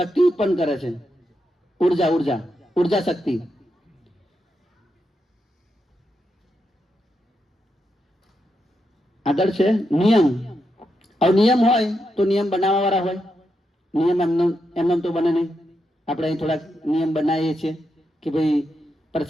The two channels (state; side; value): normal; both; correlation 0.84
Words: ઉત્પન્ન કરે છે. ઉર્જા શક્તિ. આગળ છે નિયમ. હવે નિયમ હોય તો નિયમ બનાવવા વાળા હોય. નિયમ એમને તો બને નહીં. આપણે અહીં થોડાક નિયમ બનાવીએ છીએ કે ભાઈ